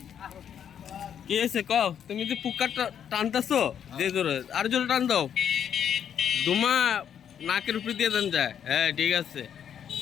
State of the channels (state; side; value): quieter; right; 8.7 dB